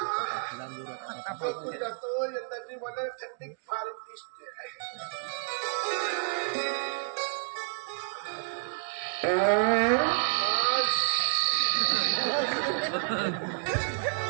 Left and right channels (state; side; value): silent; left; digital silence